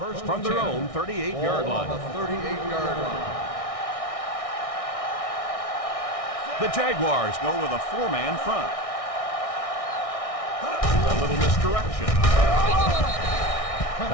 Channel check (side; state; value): right; late; 1.6 ms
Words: From their own 38-yard line. On the 38-yard line. The Jaguars go with a 4-man front. A little misdirection.